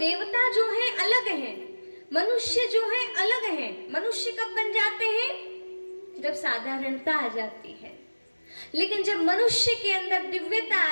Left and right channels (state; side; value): inverted; both; correlation -1.00